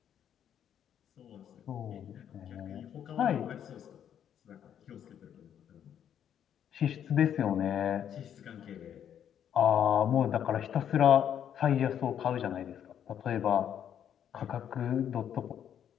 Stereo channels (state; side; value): quieter; right; 9.4 dB